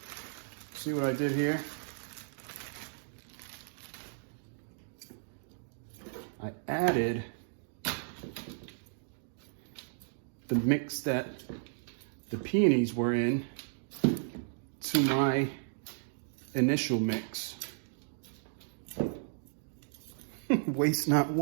See what I did here? I added the mix that the peonies were in to my initial mix. Waste not,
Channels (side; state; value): left; silent; digital silence